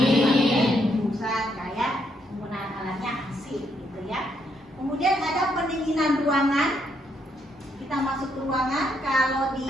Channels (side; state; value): both; normal; correlation 0.75